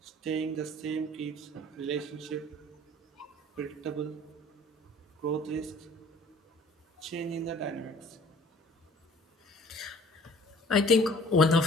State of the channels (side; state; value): both; normal; correlation 0.51